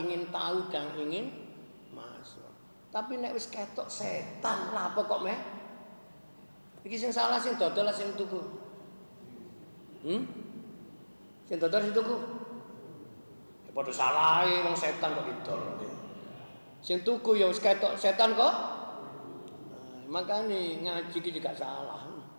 ingin tahu dan ingin masuk. Tapi nek wis ketok setan lah apa kok meh? Iki sing salah sing dodol lah sing tuku. Sing dodol sing tuku. Ya padha salahe wong setan kok didol. Sing tuku ya wis ketok setan kok. Makane ngaji iki juga salah.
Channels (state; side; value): inverted; both; correlation -1.00